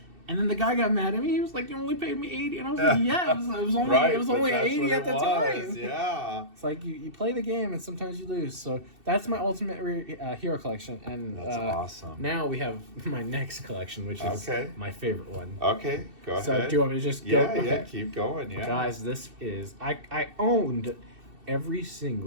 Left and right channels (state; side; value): late; left; 2.7 ms